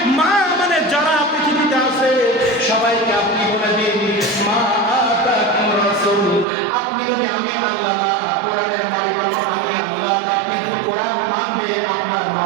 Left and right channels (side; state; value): left; drops out; at 6.5 s